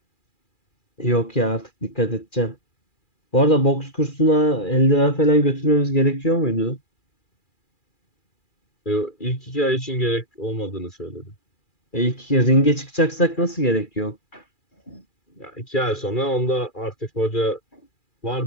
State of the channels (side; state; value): right; late; 2.4 ms